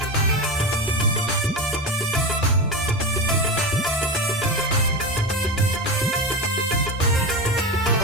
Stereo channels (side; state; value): both; normal; correlation 0.21